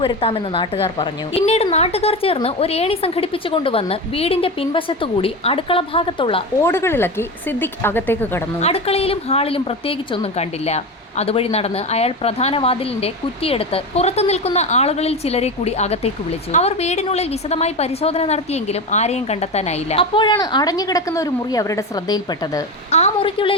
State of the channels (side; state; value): both; normal; correlation 0.22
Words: നാട്ടുകാർ പറഞ്ഞു. പിന്നീട് നാട്ടുകാർ ചേർന്ന് ഒരു ഏണി സംഘടിപ്പിച്ചു കൊണ്ടുവന്ന് വീടിന്റെ പിൻവശത്തുകൂടി അടുക്കള ഭാഗത്തുള്ള ഓടുകളിളക്കി സിദ്ദിഖ് അകത്തേക്ക് കടന്നു. അടുക്കളയിലും ഹാളിലും പ്രത്യേകിച്ചൊന്നും കണ്ടില്ല. അതുവഴി നടന്ന് അയാൾ പ്രധാന വാതിലിന്റെ കുറ്റിയെടുത്ത് പുറത്തു നിൽക്കുന്ന ആളുകളിൽ ചിലരെ കൂടി അകത്തേക്ക് വിളിച്ചു. അവർ വീടിനുള്ളിൽ വിശദമായി പരിശോധന നടത്തിയെങ്കിലും ആരെയും കണ്ടെത്താനായില്ല. അപ്പോഴാണ് അടഞ്ഞുകിടക്കുന്ന ഒരു മുറി അവരുടെ ശ്രദ്ധയിൽപ്പെട്ടത്. ആ